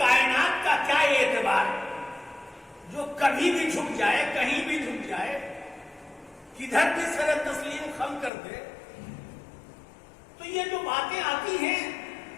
کا کیا اعتبار ہے جو کبھی بھی جھک جائے، کہیں بھی جھک جائے، کدھر بھی سر تسلیم خم کر دے۔ تو یہ جو باتیں آتی ہیں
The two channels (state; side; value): drops out; right; at 8.3 s